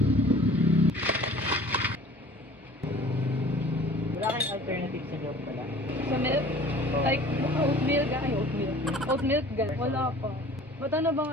Wala kayong alternative sa job pala? Sa milk? Like, oatmeal ga? Ay, oatmeal. Oatmeal ga? Wala pa. Ba't ano bang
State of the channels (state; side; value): normal; both; correlation 0.47